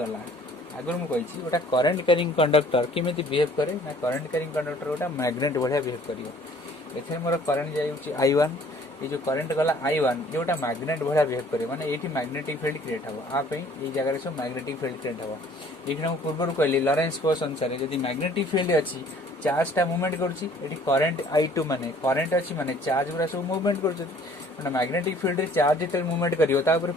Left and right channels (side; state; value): both; normal; correlation 0.55